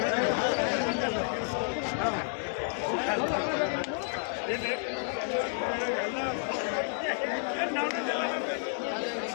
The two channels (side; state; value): right; silent; 57 dB below the other